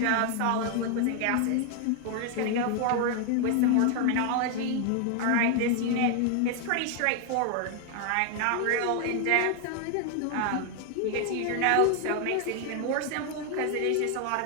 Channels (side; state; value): both; different; correlation 0.00